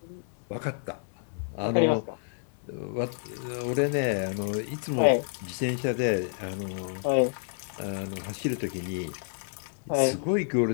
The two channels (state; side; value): silent; right; 58 dB below the other